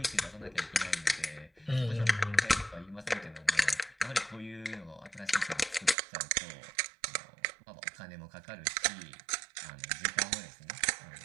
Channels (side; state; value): left; drops out; at 6.0 s